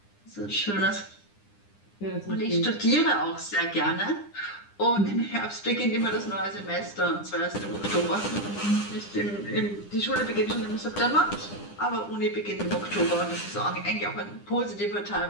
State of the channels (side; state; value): right; late; 9.9 ms